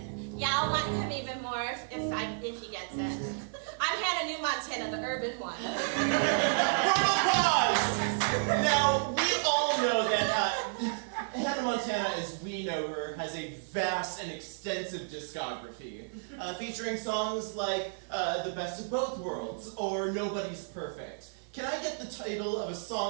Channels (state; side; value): silent; left; 57 dB below the other